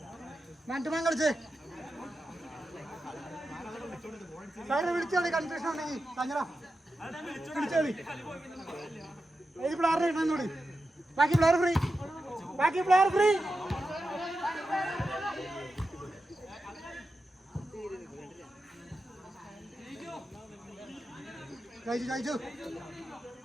മാറ്റുമാൻ കളിച്ചേ സാറിനെ വിളിച്ചോളി. കൺഫ്യൂഷൻ ഉണ്ടെങ്കിൽ തങ്ങടാ വിളിച്ചോളി. ഏത് പ്ലെയറിനെ ഇടുന്നോടി? ബാക്കി പ്ലെയർ ഫ്രീ. കഴിച്ചു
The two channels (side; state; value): both; normal; correlation 0.91